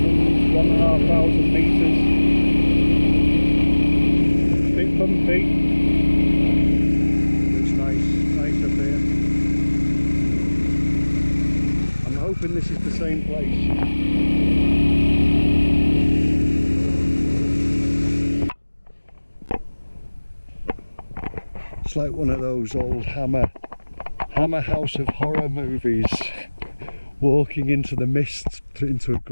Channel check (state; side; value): inverted; both; correlation -1.00